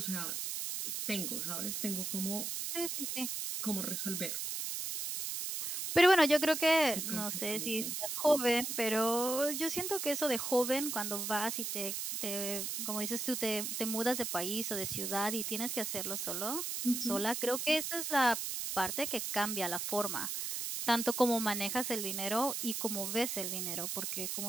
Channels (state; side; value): noise; right; hiss, 3 dB below the sound